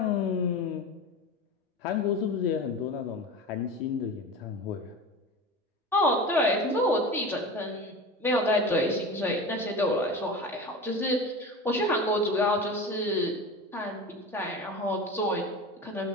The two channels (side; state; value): both; normal; correlation 0.31